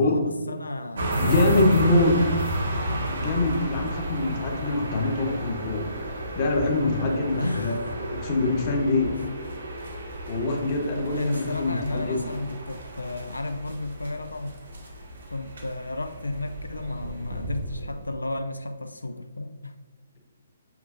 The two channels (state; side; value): inverted; both; correlation -0.66